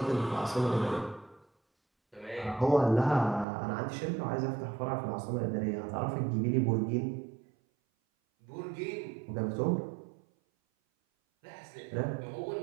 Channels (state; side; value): drops out; left; at 3.5 s